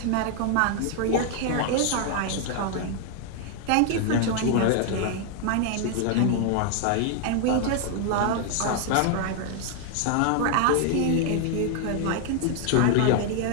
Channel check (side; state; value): both; different; correlation 0.00